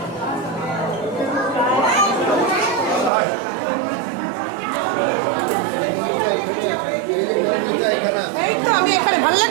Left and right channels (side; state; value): left; drops out; at 3.1 s